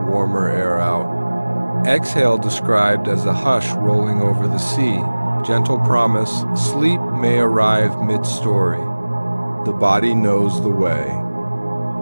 warmer air out. Exhale described as a hush rolling over the sea. Gentle promise, sleep may arrive mid-story. The body knows the way.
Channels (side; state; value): both; inverted; correlation -1.00